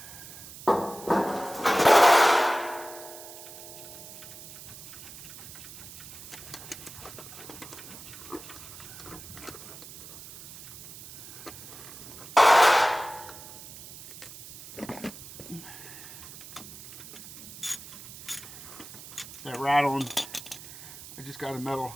That rattling, I just got a metal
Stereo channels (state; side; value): noise; right; hiss, 14 dB below the sound